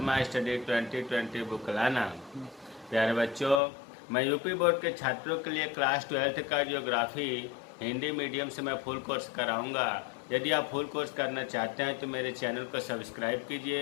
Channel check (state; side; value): drops out; right; at 3.6 s